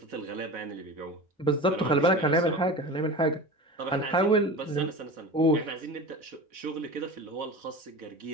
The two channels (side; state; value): both; normal; correlation 0.31